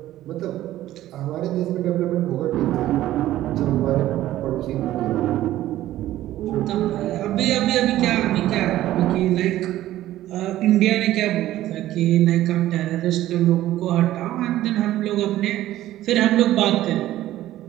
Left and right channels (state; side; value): quieter; left; 14.2 dB